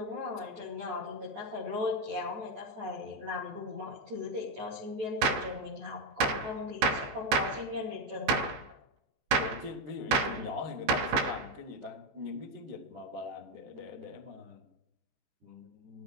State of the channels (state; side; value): late; left; 14 ms